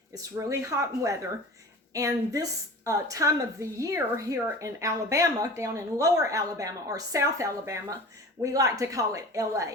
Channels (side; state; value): both; normal; correlation 0.38